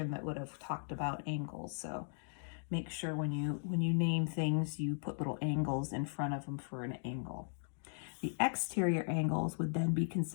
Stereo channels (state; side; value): silent; right; digital silence